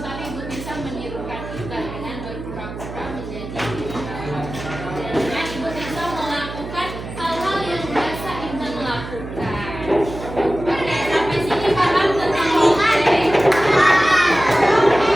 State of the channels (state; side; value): noise; right; hum, 10 dB below the sound